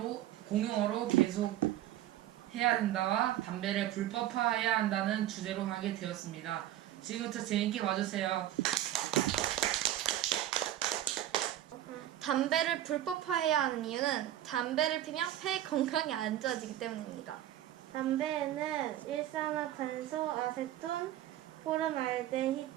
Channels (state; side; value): quieter; left; 13.0 dB